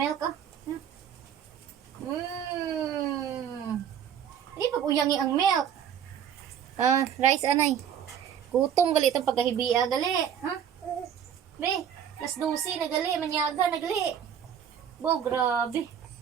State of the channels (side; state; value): left; quieter; 8.8 dB